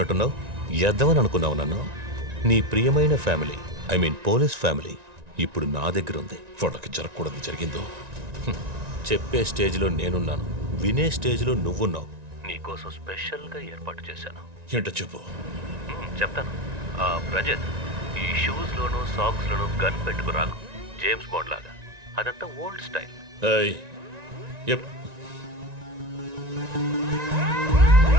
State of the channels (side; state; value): left; late; 1.9 ms